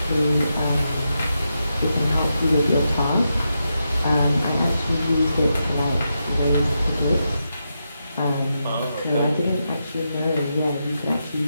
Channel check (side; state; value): both; inverted; correlation -0.85